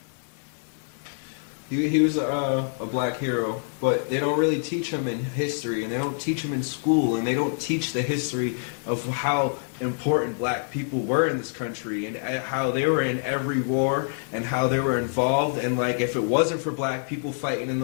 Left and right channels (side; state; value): right; silent; digital silence